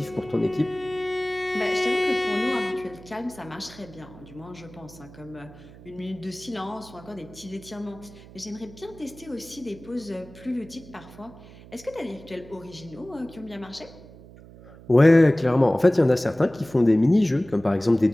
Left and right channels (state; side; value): noise; right; hum, 20 dB below the sound